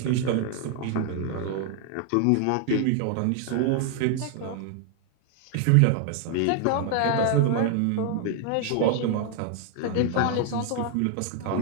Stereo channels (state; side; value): different; both; correlation 0.00